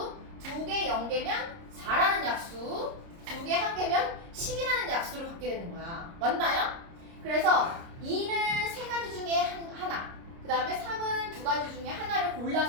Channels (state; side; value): late; left; 30 ms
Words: 2개 0개면 4라는 약수 2개 1개면 10이라는 약수를 갖게 되는 거야. 맞나요? 그래서 2는 3가지 중에 하나 그 다음에 3은 2가지 중에 하나를